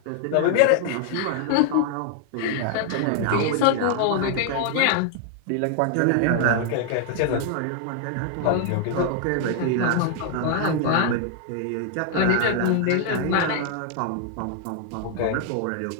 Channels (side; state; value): both; different; correlation 0.00